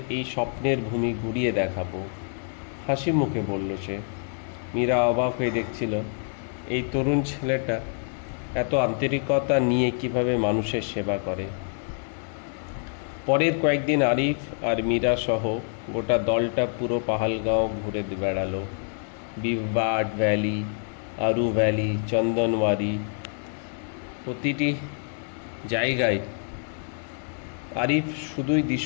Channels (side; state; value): right; silent; 61 dB below the other